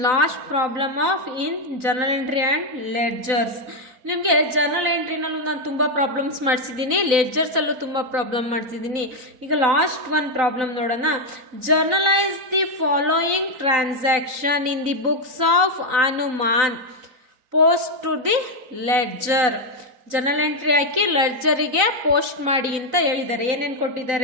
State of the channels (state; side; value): late; left; 4.0 ms